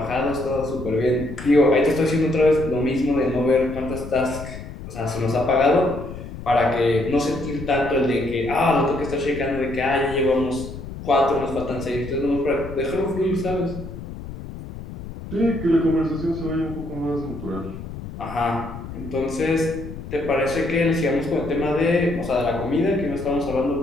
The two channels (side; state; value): left; noise; rumble, 11 dB below the sound